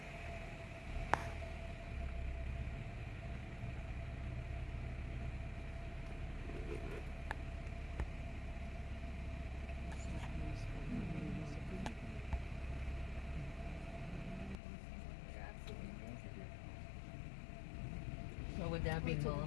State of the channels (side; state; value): right; drops out; at 14.6 s